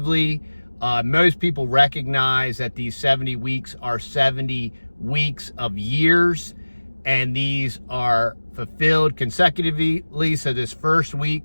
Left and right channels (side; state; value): both; inverted; correlation -1.00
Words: Most people recognize that these 70 weeks are 70 weeks of years, and these are fulfilled consecutively. So this first week,